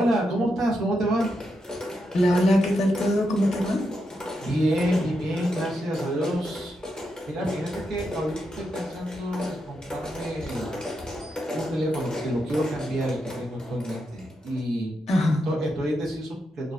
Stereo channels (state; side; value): normal; both; correlation 0.84